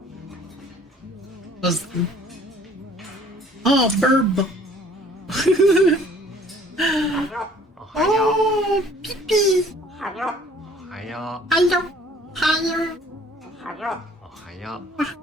Oh, burb. Oh, pee-pee. Hello. Hello. Hello.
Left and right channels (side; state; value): both; normal; correlation 0.55